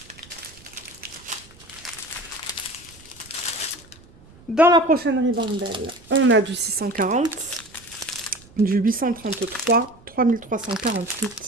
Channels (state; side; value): noise; right; rumble, 24 dB below the sound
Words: Dans la prochaine ribambelle, on a du 640, du 833,